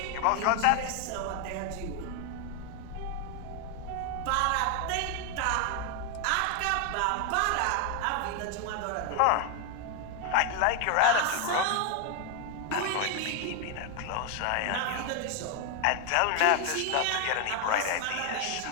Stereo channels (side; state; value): both; different; correlation 0.01